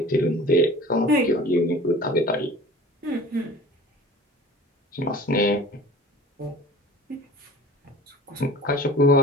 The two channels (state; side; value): normal; both; correlation 0.43